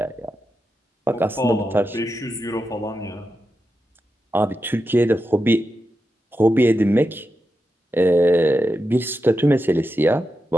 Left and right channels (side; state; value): both; normal; correlation 0.89